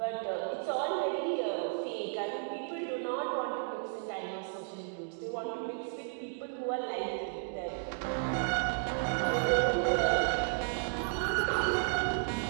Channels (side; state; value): left; silent; digital silence